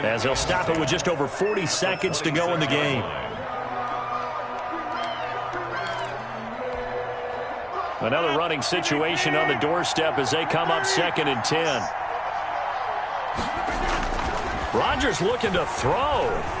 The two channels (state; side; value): identical; both; correlation 1.00